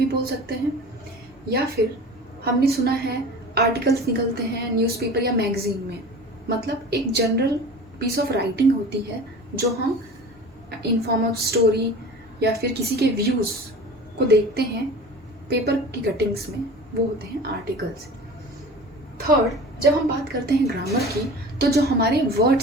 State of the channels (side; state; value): both; normal; correlation 0.38